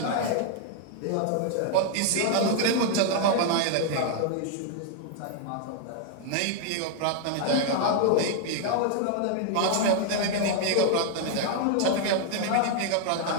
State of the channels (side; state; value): both; different; correlation 0.00